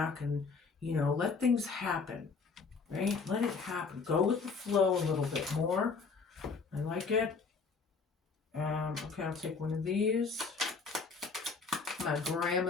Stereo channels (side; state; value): right; quieter; 4.8 dB